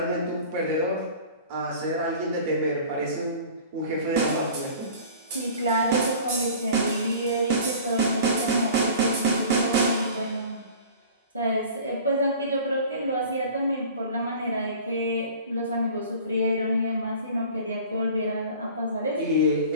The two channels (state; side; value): inverted; both; correlation -0.43